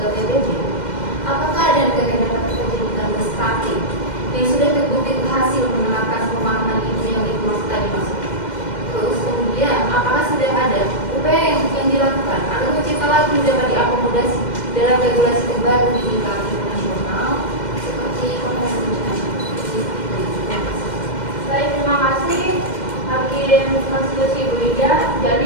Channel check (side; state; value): right; late; 2.1 ms